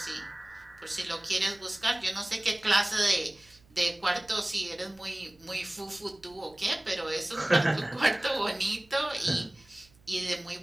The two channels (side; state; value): right; noise; hum, 29 dB below the sound